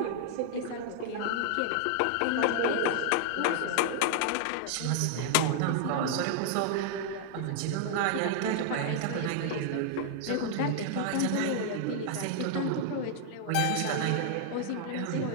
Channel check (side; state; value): both; different; correlation -0.01